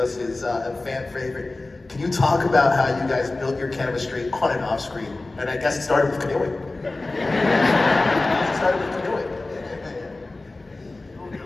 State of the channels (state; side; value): quieter; right; 3.1 dB